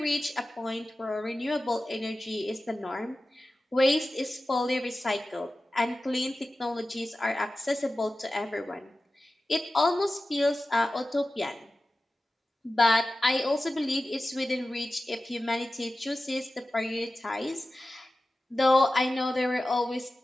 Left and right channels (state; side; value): normal; both; correlation 0.95